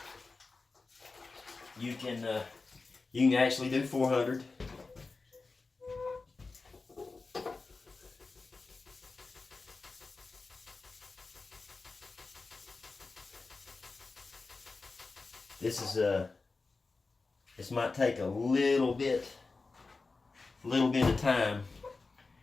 You can actually do 400. this might take a little bit of time.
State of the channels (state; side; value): quieter; right; 3.9 dB